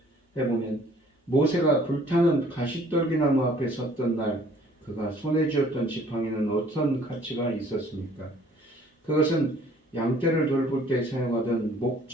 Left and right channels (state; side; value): normal; both; correlation 0.57